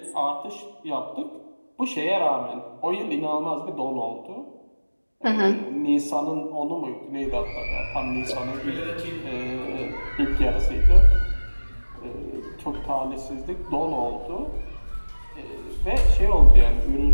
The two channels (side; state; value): both; inverted; correlation -1.00